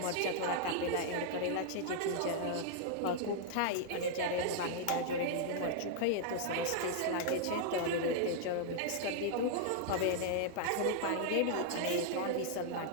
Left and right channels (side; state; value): both; different; correlation -0.01